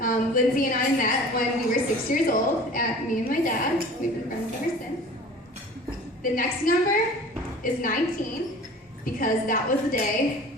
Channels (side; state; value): both; normal; correlation 0.43